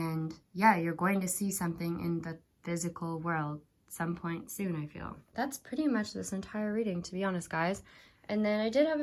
yeah, you're going to see something in the physical world some point soon, I feel. That's pretty much this entire reading, to be honest, guys. And then I did have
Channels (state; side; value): identical; both; correlation 1.00